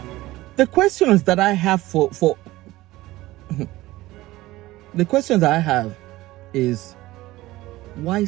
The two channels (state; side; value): quieter; left; 17.8 dB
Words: the questions that I have for the questions that I have is, why